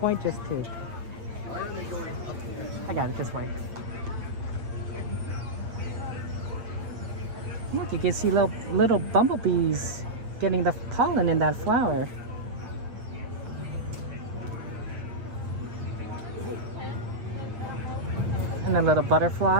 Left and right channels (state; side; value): late; left; 8.7 ms